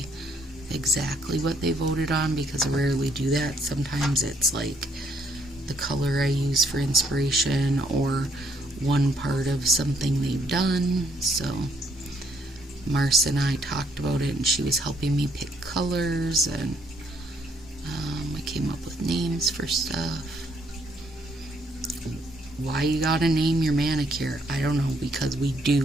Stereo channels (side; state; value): both; normal; correlation 0.69